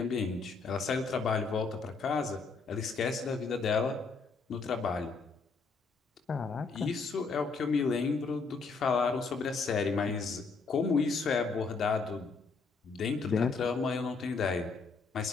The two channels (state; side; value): quieter; right; 4.5 dB